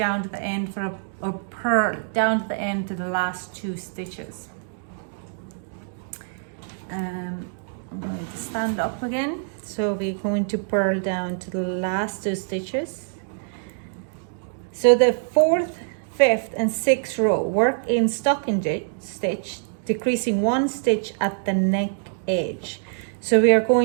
to the end for a purl down to the end to the last 2 stitches. I'm going to stand up again. So we're going to purl down to the last 2 stitches. So the 4th, 5th and 6th row, work in stocking stitch, decreasing 1 stitch at the neck edge. So we are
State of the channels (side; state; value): left; silent; digital silence